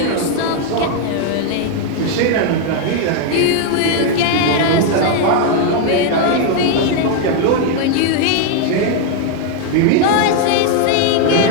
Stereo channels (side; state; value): both; different; correlation 0.00